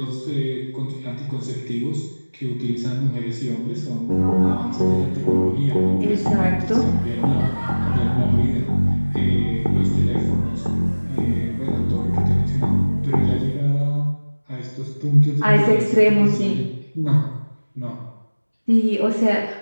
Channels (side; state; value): both; inverted; correlation -1.00